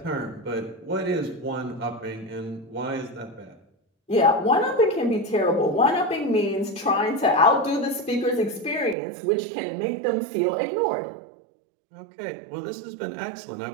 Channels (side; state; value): left; drops out; at 9.0 s